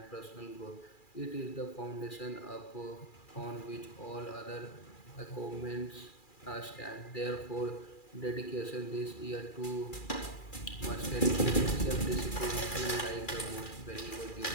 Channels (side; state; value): right; late; 2.4 ms